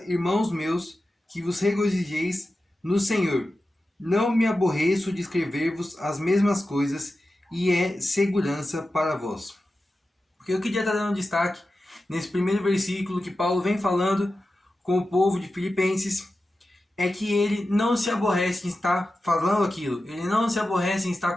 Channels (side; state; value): both; normal; correlation 0.93